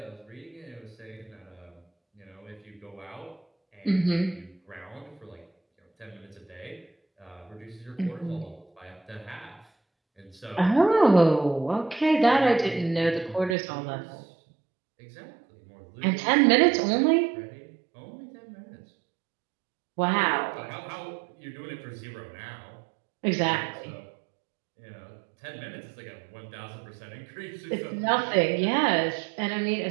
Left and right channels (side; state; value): left; drops out; at 13.6 s